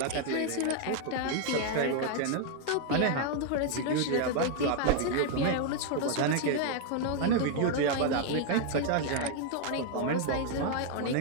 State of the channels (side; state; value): both; different; correlation 0.00